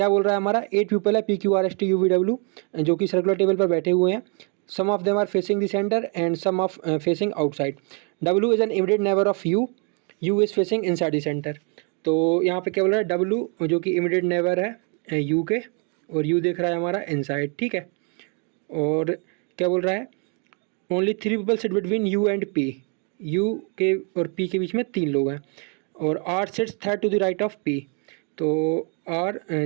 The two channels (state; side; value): quieter; left; 37.9 dB